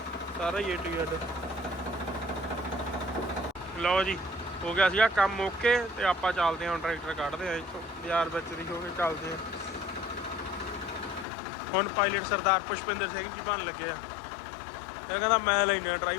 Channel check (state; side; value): drops out; right; at 11.2 s